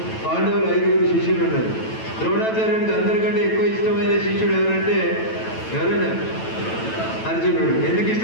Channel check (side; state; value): right; late; 9.1 ms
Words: పాండవులు 5 శిష్యులు ఉన్నారు. ద్రోణాచార్యునికి అందరికంటే ఎక్కువ ఇష్టమైన శిష్యుడు ఎవరంటే ఎవరైనా అర్జునుడు. ఎందుకు